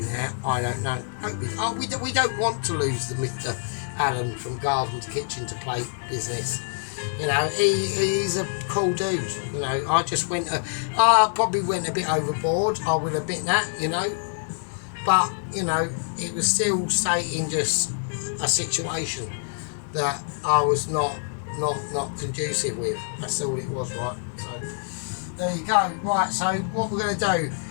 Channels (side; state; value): right; silent; digital silence